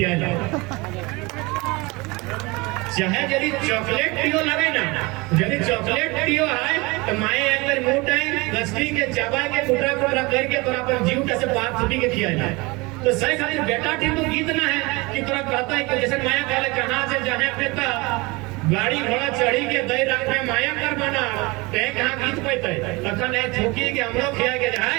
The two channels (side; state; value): left; quieter; 24.8 dB